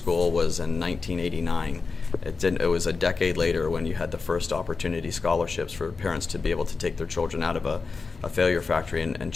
was in 1989. It was a decade later when you had the first opportunity scholarships for parents to be able to take their children out of a failure factory and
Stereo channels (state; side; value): quieter; right; 4.5 dB